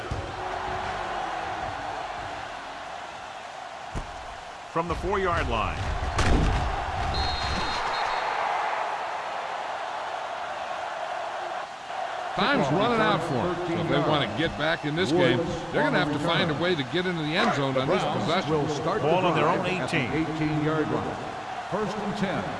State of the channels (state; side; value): identical; both; correlation 1.00